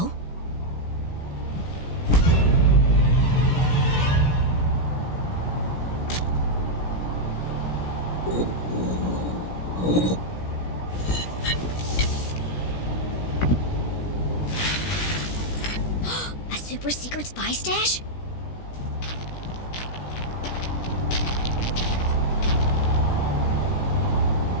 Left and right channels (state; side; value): late; right; 17 ms